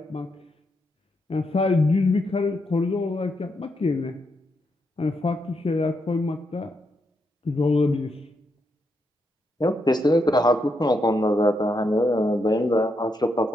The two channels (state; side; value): normal; both; correlation 0.81